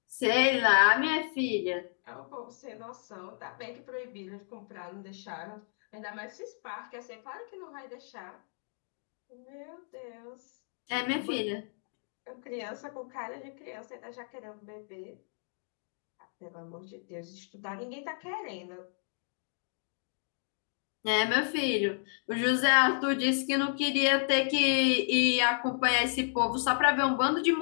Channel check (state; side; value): silent; right; digital silence